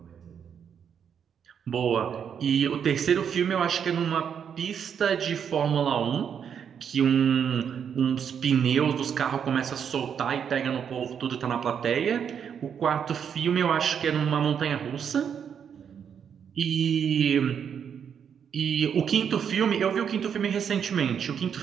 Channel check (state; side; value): quieter; left; 7.8 dB